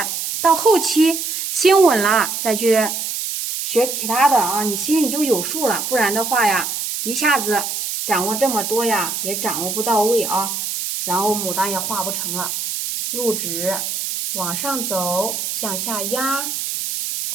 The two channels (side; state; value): right; noise; hiss, 3 dB below the sound